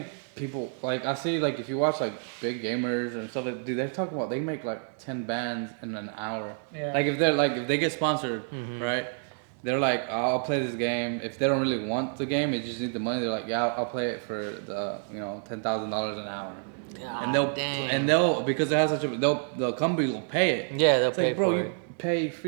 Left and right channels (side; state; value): left; silent; 59 dB below the other